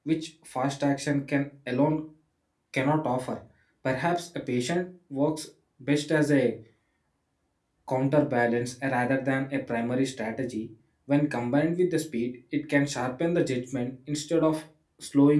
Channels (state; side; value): identical; both; correlation 1.00